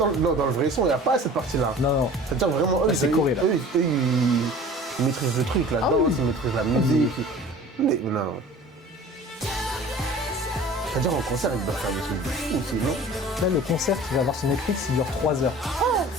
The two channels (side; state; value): both; normal; correlation 0.43